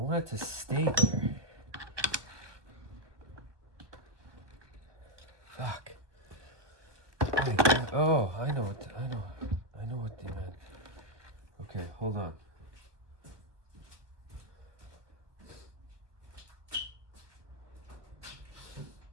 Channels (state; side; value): late; left; 1.3 ms